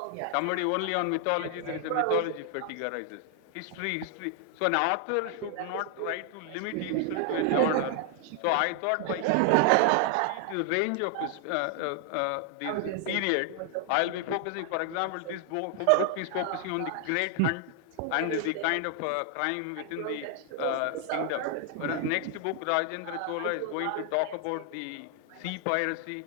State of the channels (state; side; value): different; both; correlation 0.00